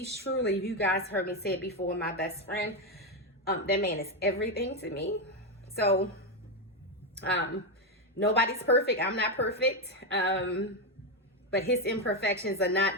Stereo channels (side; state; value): both; normal; correlation 0.07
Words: truly, you guys heard me say it before, my best friend. That man is everything to me. So nobody's perfect. I'm not perfect. But his imperfections are